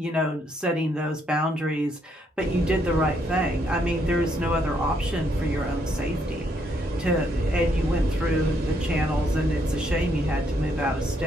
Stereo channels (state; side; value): normal; both; correlation 0.73